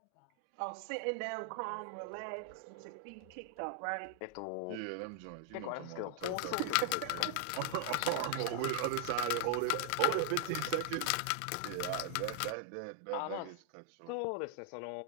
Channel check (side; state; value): both; different; correlation 0.00